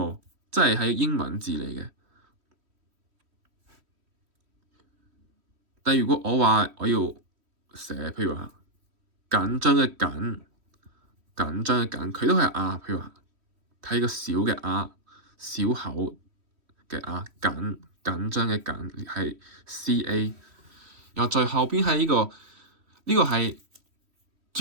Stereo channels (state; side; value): late; left; 3.1 ms